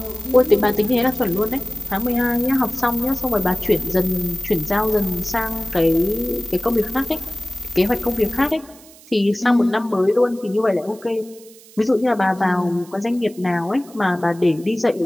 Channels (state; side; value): noise; right; hiss, 23 dB below the sound